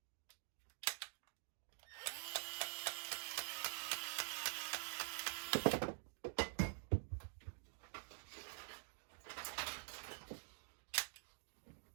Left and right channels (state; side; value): silent; left; digital silence